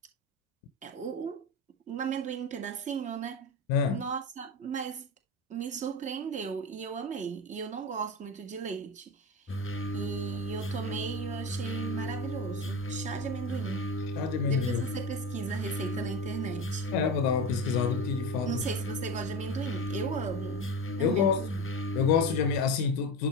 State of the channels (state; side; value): normal; both; correlation 0.23